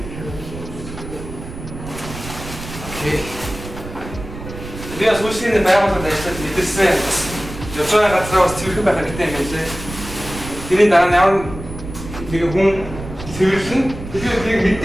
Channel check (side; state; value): right; noise; rumble, 11 dB below the sound